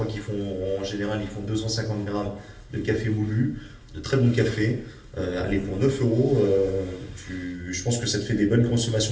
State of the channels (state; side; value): identical; both; correlation 1.00